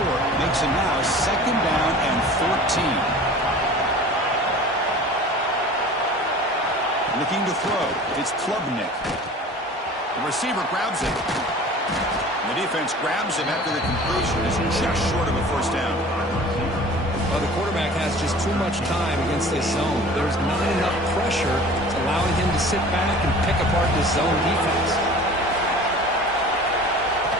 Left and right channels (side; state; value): both; normal; correlation 0.42